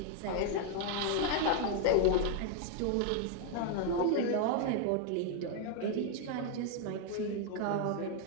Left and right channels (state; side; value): different; both; correlation 0.00